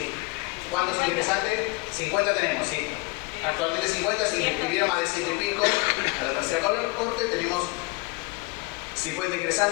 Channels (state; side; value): quieter; right; 25.7 dB